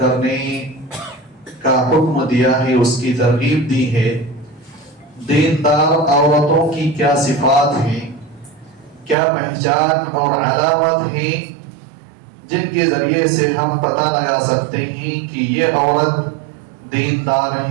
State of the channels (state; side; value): drops out; left; at 9.2 s